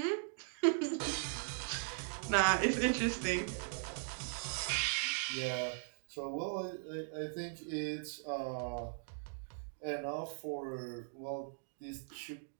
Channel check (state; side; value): silent; left; digital silence